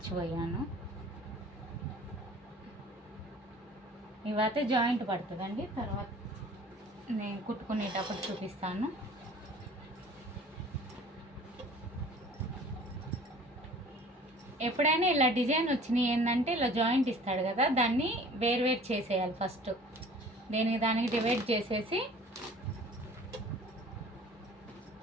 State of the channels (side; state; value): both; normal; correlation 0.48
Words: ఇవైతే జాయింట్ పడుతుందండి, తర్వాత నేను కుట్టుకునేటప్పుడు చూపిస్తాను. ఎప్పుడైనా ఇలా డిజైన్ వచ్చినాయి ఏంటంటే ఇలా జాయింట్ ఇస్తాడు కదా, దాన్ని వేరు చేసేయాలి ఫస్ట్. దానికి డివైడ్ చేసేసి